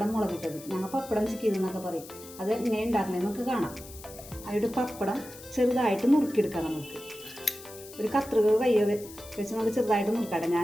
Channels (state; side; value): noise; left; hiss, 17 dB below the sound